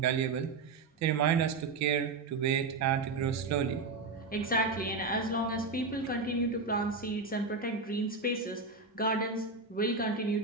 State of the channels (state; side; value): quieter; left; 4.1 dB